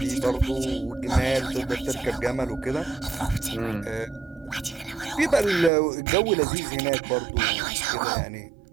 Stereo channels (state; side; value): drops out; left; at 5.7 s